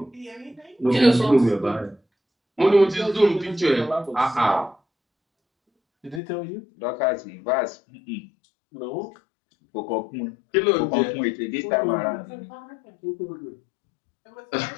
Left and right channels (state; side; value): drops out; right; at 6.2 s